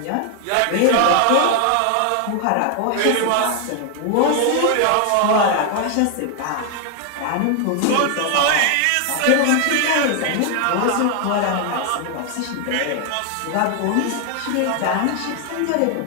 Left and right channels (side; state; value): both; different; correlation 0.00